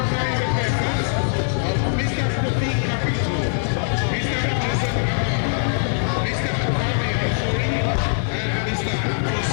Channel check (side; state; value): right; silent; digital silence